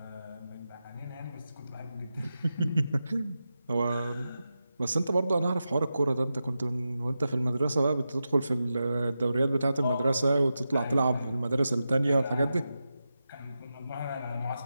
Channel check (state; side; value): inverted; both; correlation -0.91